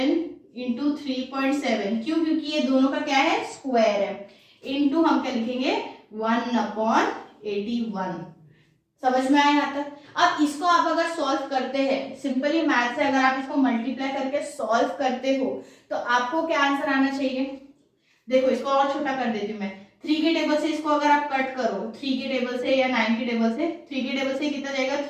इंटू 3.7, क्यों, क्योंकि ये दोनों का क्या है, स्क्वायर है, इंटू हम क्या लिखेंगे 1/81। समझ में आया यहाँ तक। अब इसको आप अगर सॉल्व करते हैं, सिंपली मैथ से अगर आप इसको मल्टीप्लाई करके सॉल्व करते हो तो आपको क्या आंसर आना चाहिए, देखो इसको और छोटा कर देती हूँ मैं, 3 के टेबल से इसको अगर आप कट करो 3 के टेबल से या 9 के टेबल से, 3 के टेबल से कितना जाएगा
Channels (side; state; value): both; identical; correlation 1.00